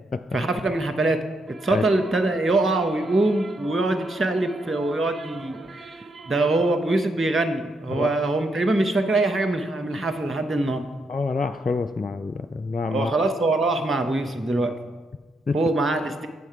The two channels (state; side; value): normal; both; correlation 0.79